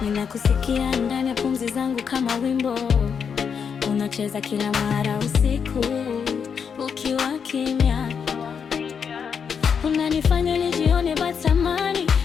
ninakusikia ndani ya pumzi zangu kama wimbo unacheza kila mara usiku ukiwa kimya. Unanifanya nijione batamani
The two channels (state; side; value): quieter; right; 6.7 dB